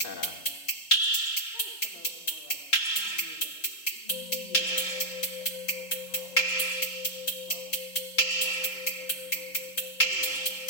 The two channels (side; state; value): right; late; 3.8 ms